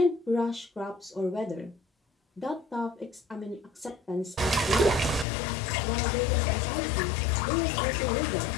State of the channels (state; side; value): drops out; right; at 5.2 s